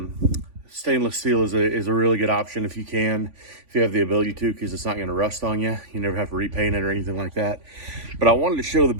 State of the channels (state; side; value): late; left; 3.5 ms